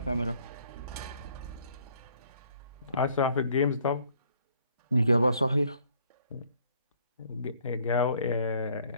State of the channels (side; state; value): both; inverted; correlation -0.62